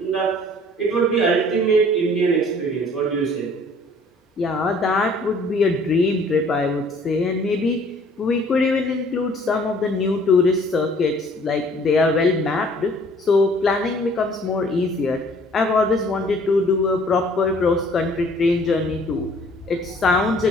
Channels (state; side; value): normal; both; correlation 0.56